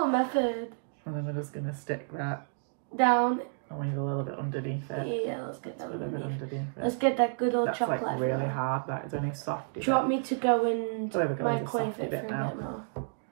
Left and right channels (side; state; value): left; silent; digital silence